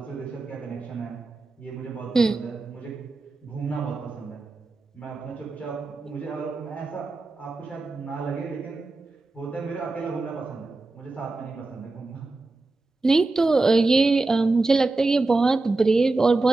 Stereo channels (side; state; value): left; quieter; 3.4 dB